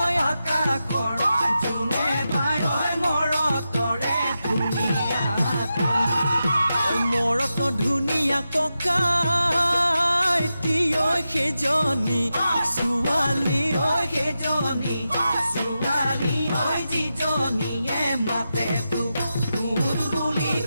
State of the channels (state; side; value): inverted; both; correlation -0.90